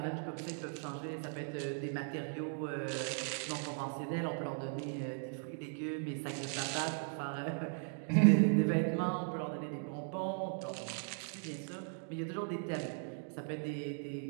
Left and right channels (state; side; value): silent; left; 53 dB below the other